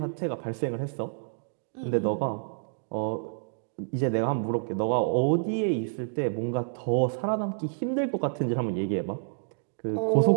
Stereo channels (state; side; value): silent; left; digital silence